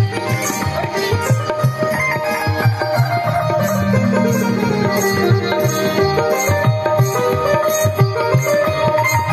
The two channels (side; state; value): both; identical; correlation 1.00